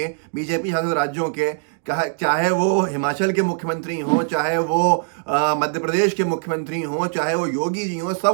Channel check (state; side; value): silent; left; digital silence